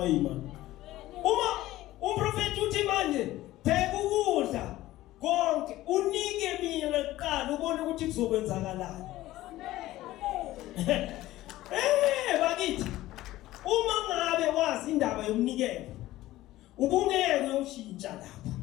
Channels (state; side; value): quieter; right; 16.1 dB